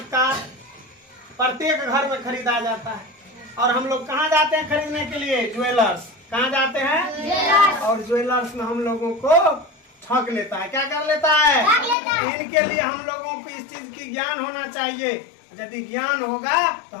का, प्रत्येक घर में खरीदा जाता है। और हम लोग कहाँ जाते हैं खरीदने के लिए? ज्वेलर्स। कहाँ जाते हैं? और ज्वेलर्स में हम लोगों को ठग लेता है। क्या कर लेता है? इनके लिए हम लोगों को इस चीज की ज्ञान होना चाहिए। यदि ज्ञान होगा तो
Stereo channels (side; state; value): right; drops out; at 12.0 s